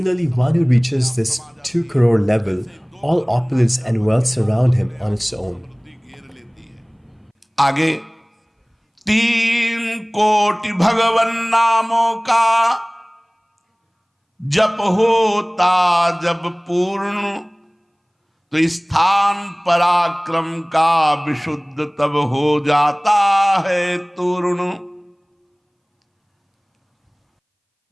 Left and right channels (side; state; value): both; identical; correlation 1.00